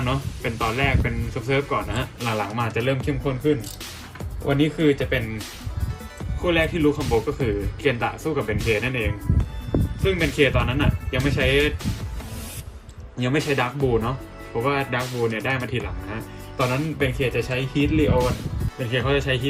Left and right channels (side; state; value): both; identical; correlation 1.00